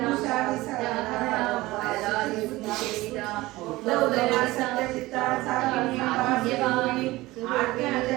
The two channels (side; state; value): left; quieter; 19.2 dB